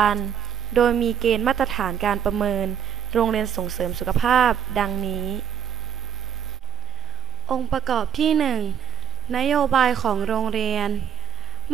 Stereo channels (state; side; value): quieter; left; 7.8 dB